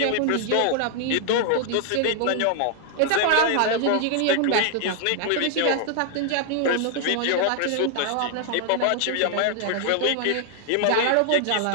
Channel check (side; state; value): both; different; correlation 0.00